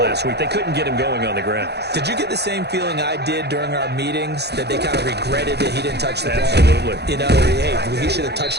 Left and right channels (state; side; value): late; left; 0.48 ms